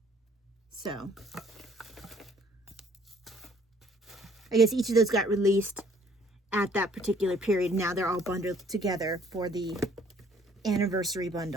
So, I guess each of those got released at that particular period. Now they're all bundled together for the anniversary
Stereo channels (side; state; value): both; normal; correlation 0.60